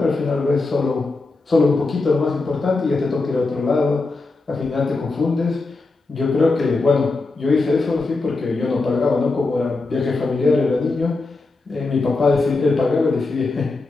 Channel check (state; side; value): quieter; right; 3.6 dB